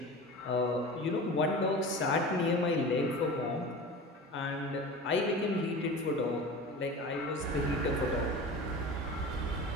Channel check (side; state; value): both; normal; correlation 0.34